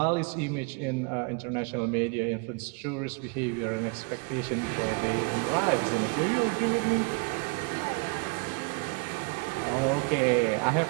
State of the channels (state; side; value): quieter; left; 30.5 dB